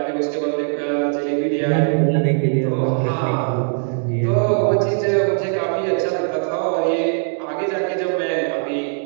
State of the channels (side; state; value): left; silent; 63 dB below the other